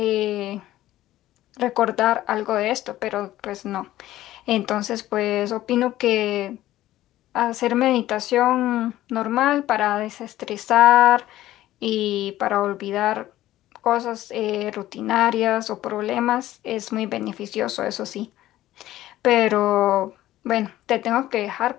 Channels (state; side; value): quieter; right; 14.7 dB